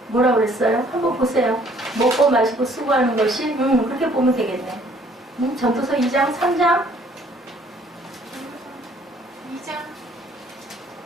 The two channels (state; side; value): normal; both; correlation 0.60